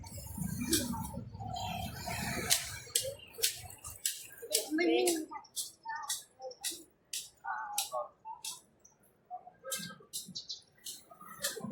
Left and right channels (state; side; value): identical; both; correlation 1.00